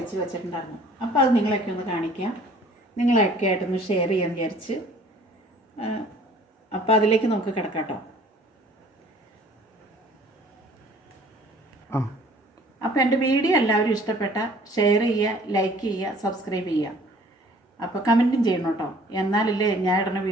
വെച്ചിട്ടുണ്ടായിരുന്നു. അപ്പോൾ അത് നിങ്ങളെയൊക്കെ ഒന്ന് കാണിക്കാം, നിങ്ങളെയൊക്കെ ആയിട്ടൊന്ന് ഷെയർ ചെയ്യാൻ വിചാരിച്ച്. അപ്പോൾ അതിലേക്ക് നമുക്ക് കിടക്കാം കേട്ടോ. അപ്പോൾ എൻ്റെ വീഡിയോ എല്ലാവരും ഇഷ്ടപ്പെട്ട ഷെയർ ചെയ്യുക, ലൈക്ക് ചെയ്യുക, സബ്സ്ക്രൈബ് ചെയ്യുക. അപ്പോൾ കമൻറ്റും ചെയ്യണം കേട്ടോ, എന്നാലല്ലേ ഞാൻ ഇടുന്ന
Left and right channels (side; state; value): both; normal; correlation 0.53